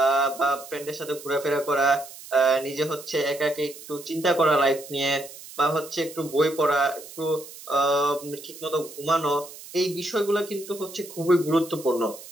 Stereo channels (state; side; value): noise; right; hiss, 16 dB below the sound